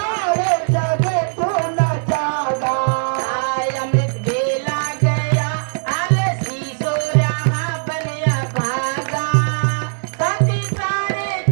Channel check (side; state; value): left; silent; digital silence